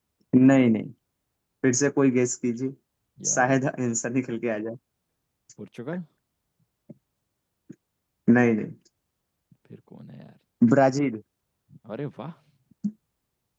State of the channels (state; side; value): identical; both; correlation 1.00